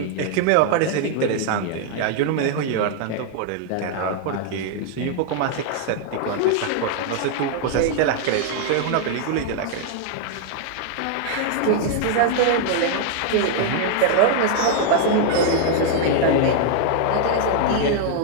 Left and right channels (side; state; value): both; different; correlation 0.00